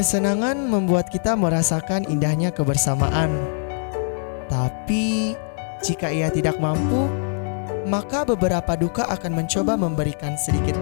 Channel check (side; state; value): right; silent; 64 dB below the other